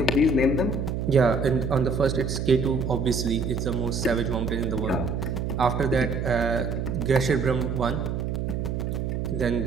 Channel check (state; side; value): noise; right; hum, 2 dB below the sound